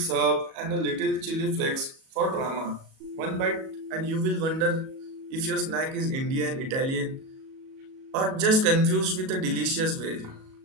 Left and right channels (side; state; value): left; late; 37 ms